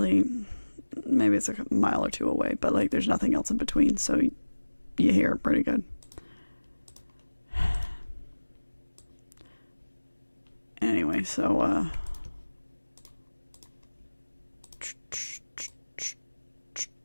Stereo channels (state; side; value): inverted; both; correlation -1.00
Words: maybe it's like a mile or two away, but, like, there's nothing else in between, so you hear it pretty good. Anyway, so